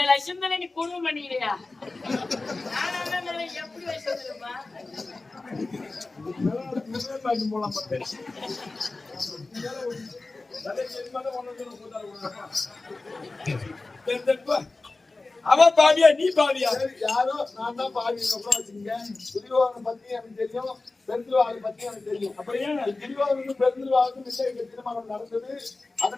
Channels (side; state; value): right; quieter; 3.4 dB